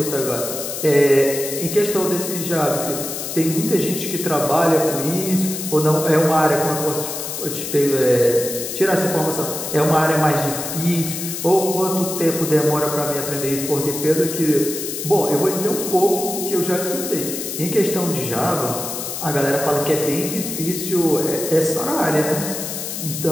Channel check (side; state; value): left; noise; hiss, 6 dB below the sound